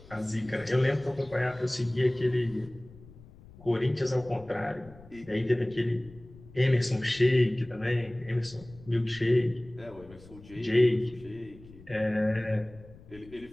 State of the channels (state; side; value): noise; left; rumble, 21 dB below the sound